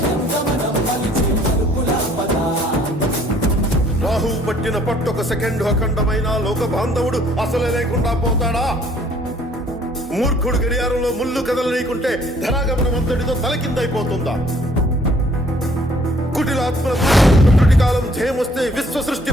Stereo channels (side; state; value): both; normal; correlation 0.60